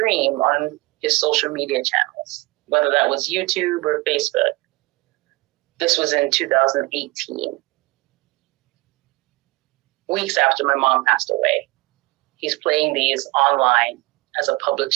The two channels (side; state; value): left; quieter; 22.6 dB